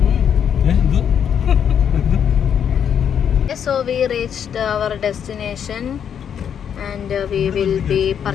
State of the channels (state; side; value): quieter; right; 8.3 dB